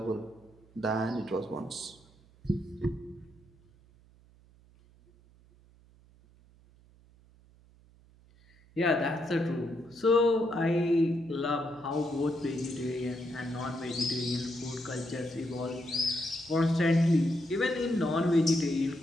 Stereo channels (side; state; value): right; noise; hum, 27 dB below the sound